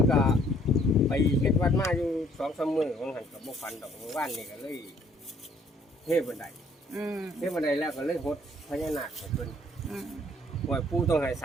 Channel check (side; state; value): both; normal; correlation 0.62